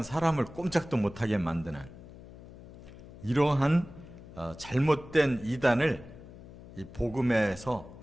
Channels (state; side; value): noise; left; hum, 17 dB below the sound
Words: 사람을 꼼짝도 못하게 만드는 이러한 잘못된 이단을 이 복음에서